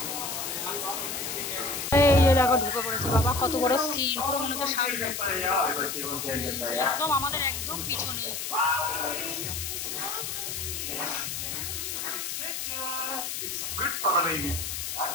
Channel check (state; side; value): noise; left; hiss, 4 dB below the sound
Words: এই যে দেখো ঢুকে পড়েছে বাবা, কত বড় স্ক্রিন, পুরো মনে হচ্ছে সামনে, একদম আমাদের একদম পিছনে। Good for the baby. यार